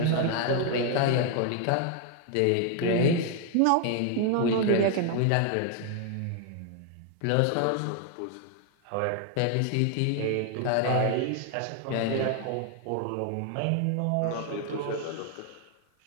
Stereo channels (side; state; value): both; different; correlation 0.00